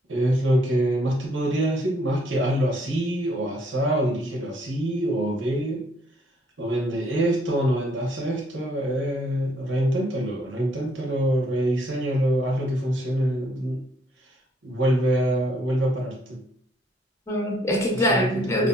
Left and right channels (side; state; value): both; normal; correlation 0.67